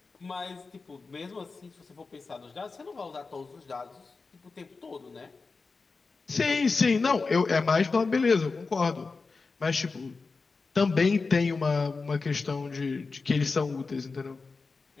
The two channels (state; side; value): quieter; right; 4.2 dB